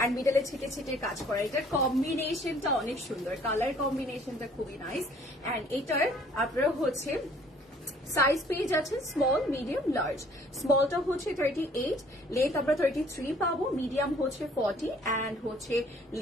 এন্ড মিডলে ছিটে ছিটে কাজ করা। এটার কম্বিনেশনটা অনেক সুন্দর, কালার কম্বিনেশনটা খুবই নাইস। এন্ড এটার আপনারা হচ্ছে সাইজ পেয়ে যাচ্ছেন স্মল, মিডিয়াম, লার্জ। স্মলটা হচ্ছে 38, লেন্থ আমরা 33 পাবো, মিডিয়াম হচ্ছে 40 এন্ড হচ্ছে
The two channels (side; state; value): both; normal; correlation 0.57